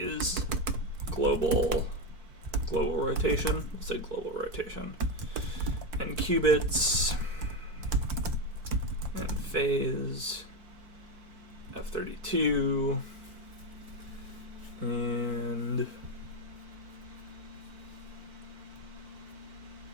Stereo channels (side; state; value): left; late; 4.5 ms